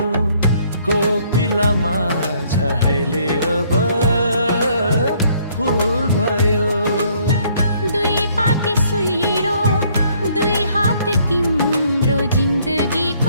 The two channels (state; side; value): inverted; both; correlation -0.64